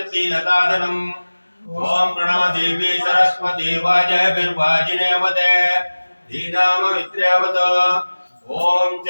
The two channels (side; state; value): both; inverted; correlation -1.00